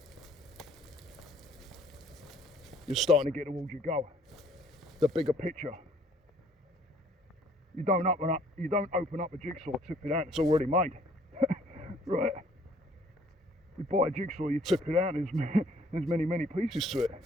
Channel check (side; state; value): both; normal; correlation 0.59